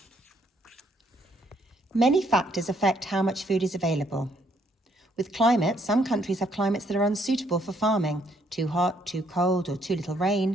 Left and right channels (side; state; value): both; normal; correlation 0.69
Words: Many factors affect how much food is available. With climate, some countries have climates that are unsuitable for farming, too hot, too cold, or too little